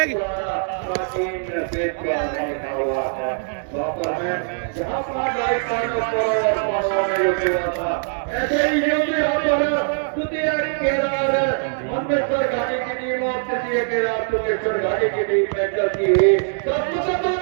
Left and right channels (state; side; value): silent; left; 64 dB below the other